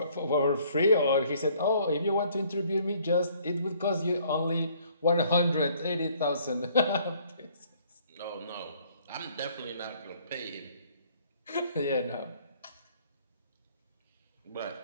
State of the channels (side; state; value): both; inverted; correlation -0.61